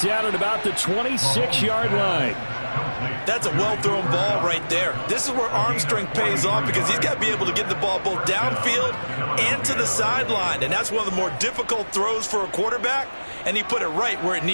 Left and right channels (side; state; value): both; inverted; correlation -1.00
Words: down at about the 26-yard line. That's a well-thrown ball right there. This is where arm strength pays off because he's got to be able to get the ball both downfield and to the sideline. And that's one of the more difficult throws for a quarterback, and he put it right where it